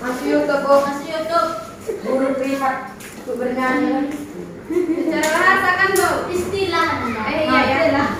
Masuk YouTube, Bu. Masuk YouTube. Guru privat untuk bernyanyi. Secara bahasa kan, Bu. Istilah namanya. Iya, ya. lah.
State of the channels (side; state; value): both; identical; correlation 1.00